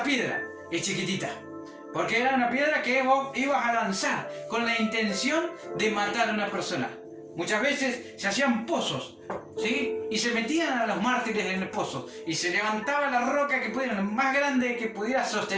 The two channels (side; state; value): both; identical; correlation 1.00